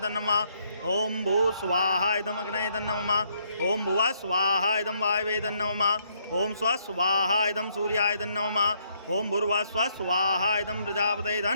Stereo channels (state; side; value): inverted; both; correlation -0.71